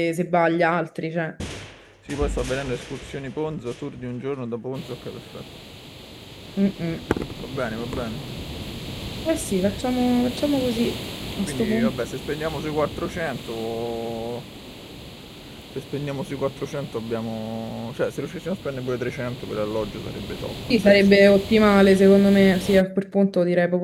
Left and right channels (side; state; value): both; identical; correlation 1.00